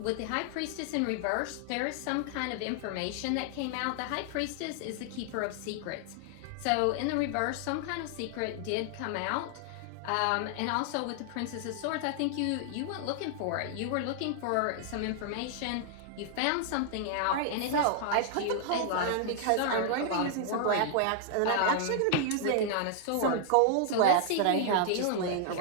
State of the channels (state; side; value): different; both; correlation 0.00